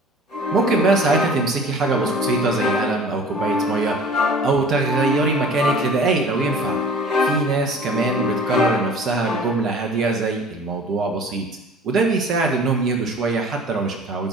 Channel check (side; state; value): both; normal; correlation 0.45